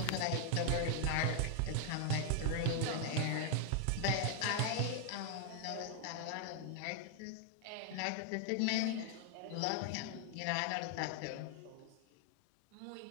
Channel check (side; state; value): both; different; correlation 0.00